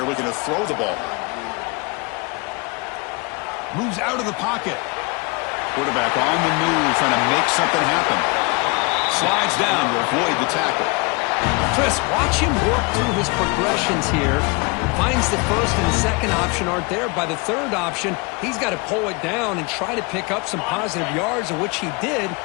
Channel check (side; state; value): right; quieter; 28.9 dB